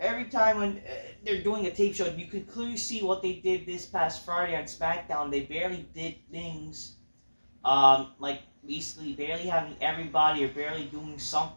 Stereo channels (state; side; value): inverted; both; correlation -1.00